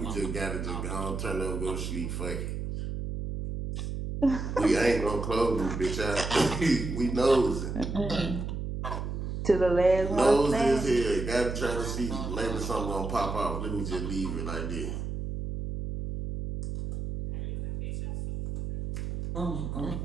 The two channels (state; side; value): noise; right; hum, 4 dB below the sound